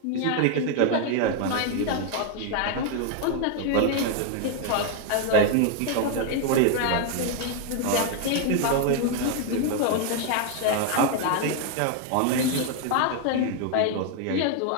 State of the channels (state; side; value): different; both; correlation 0.00